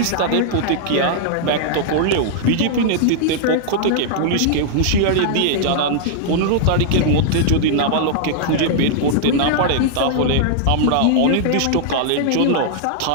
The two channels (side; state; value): both; different; correlation -0.01